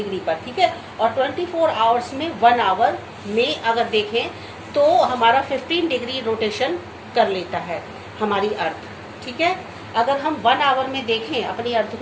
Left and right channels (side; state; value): both; identical; correlation 1.00